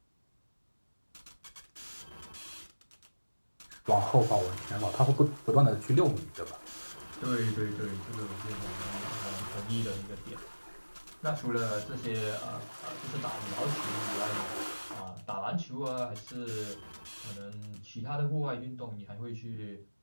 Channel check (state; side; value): inverted; both; correlation -1.00